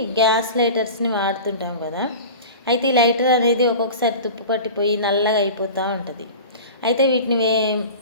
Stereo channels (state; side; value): inverted; both; correlation -0.35